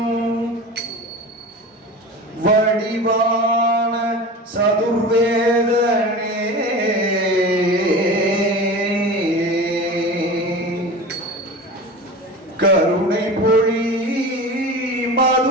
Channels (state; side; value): normal; both; correlation 0.33